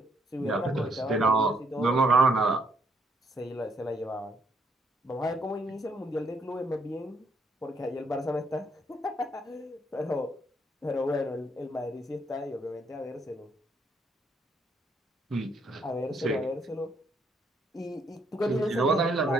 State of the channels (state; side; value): normal; both; correlation 0.71